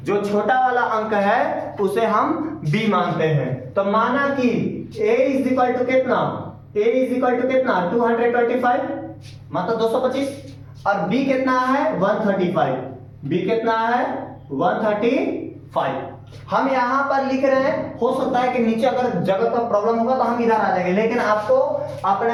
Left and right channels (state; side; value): identical; both; correlation 1.00